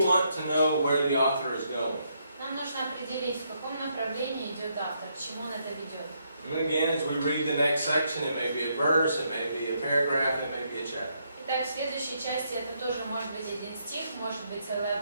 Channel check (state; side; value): inverted; both; correlation -0.76